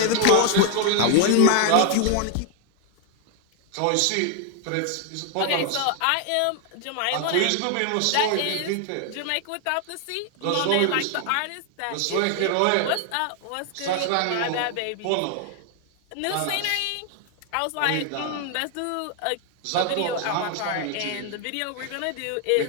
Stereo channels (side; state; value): both; different; correlation 0.00